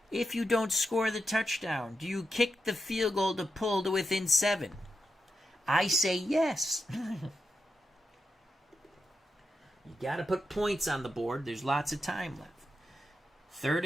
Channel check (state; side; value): normal; both; correlation 0.86